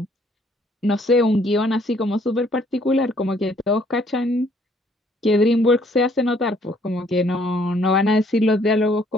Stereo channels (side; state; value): both; normal; correlation 0.64